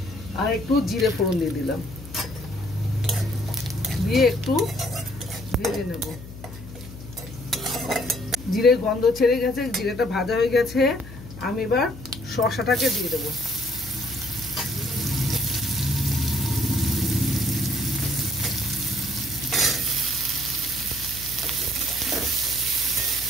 আর একটু জিরে ফোড়ন দিয়ে দিলাম। দিয়ে একটু ভেজে নেব। জিরের গন্ধ ছেড়ে গেছে, জিরেটা ভাজা হয়ে গেছে। আমি এবার শসাটাকে দিয়ে দেবো।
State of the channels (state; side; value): noise; left; hum, 14 dB below the sound